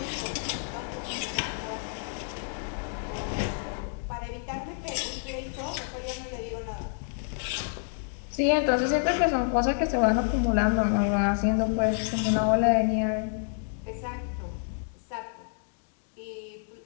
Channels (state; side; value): silent; right; 59 dB below the other